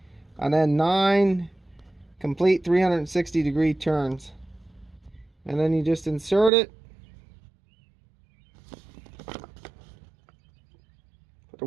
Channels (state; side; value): drops out; left; at 6.5 s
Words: and then 9 complete 360-degree turns, and then you just insert it. Put the